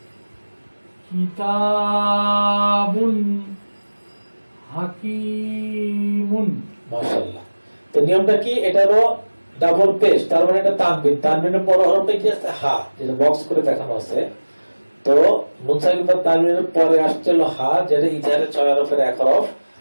কিতাবুন হাকিমুন। মাশাআল্লাহ। তো নিয়মটা কি? এটা হলো ডাবল পেশ, তার মানে এটা তানবিন, তানবিনের পর হরফটা কি আছে? হা, যেটা বক্স করে দেখানো আছে। তো মুনসাকিন বা তানবিনের পরে আসছে হলো হা, যেটা ইজহারের 6 হরফের এক হরফ,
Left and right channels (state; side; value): inverted; both; correlation -1.00